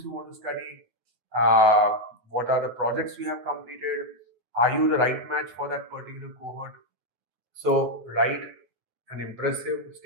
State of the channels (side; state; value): left; late; 9.3 ms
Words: you want to study? What are the projects you have completed? Are you the right match for that particular cohort? So write an impressive